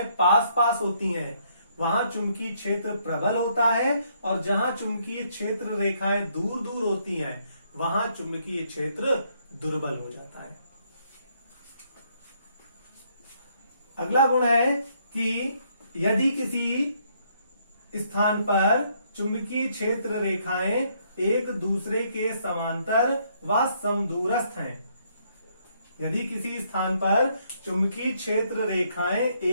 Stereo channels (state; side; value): inverted; both; correlation -0.70